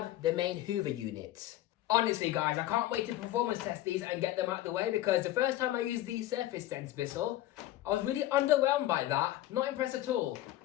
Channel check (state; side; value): quieter; right; 14.4 dB